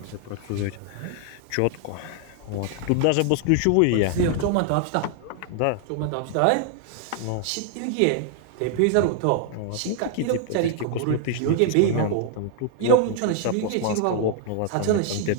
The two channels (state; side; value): different; both; correlation 0.00